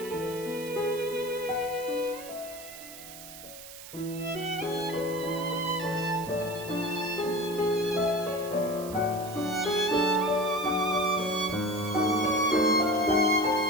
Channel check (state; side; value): noise; right; hiss, 14 dB below the sound